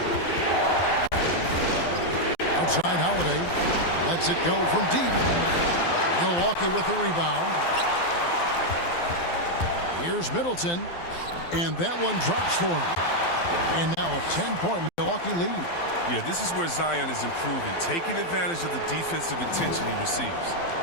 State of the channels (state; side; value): late; right; 12 ms